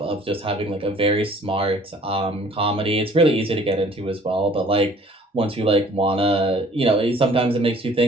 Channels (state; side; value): normal; both; correlation 0.54